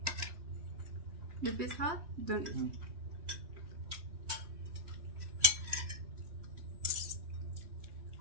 If it's hot, don't eat.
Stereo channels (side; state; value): left; late; 3.1 ms